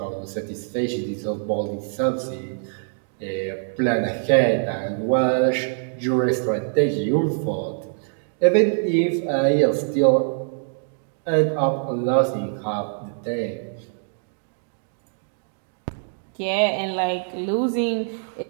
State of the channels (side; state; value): left; silent; digital silence